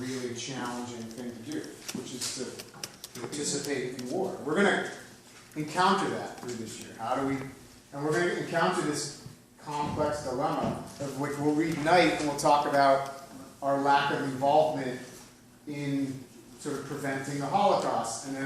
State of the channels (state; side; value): identical; both; correlation 1.00